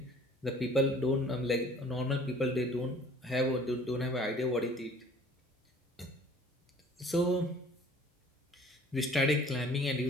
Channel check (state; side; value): normal; both; correlation 0.51